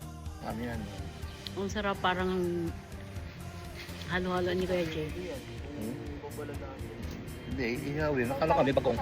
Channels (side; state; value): both; identical; correlation 1.00